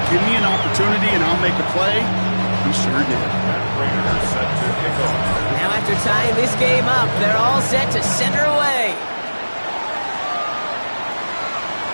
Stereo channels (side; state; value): both; inverted; correlation -1.00